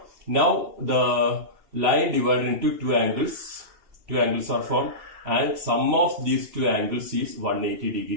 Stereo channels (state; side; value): late; left; 2.8 ms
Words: Now the line divided into two angles. Two angles are formed and sum of these two angles is 180